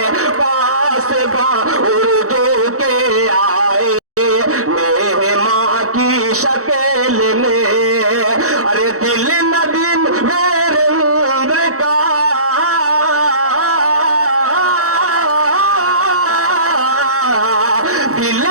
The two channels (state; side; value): late; left; 0.65 ms